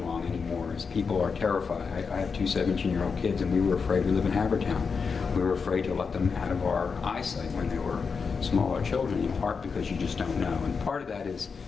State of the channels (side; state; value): right; quieter; 5.4 dB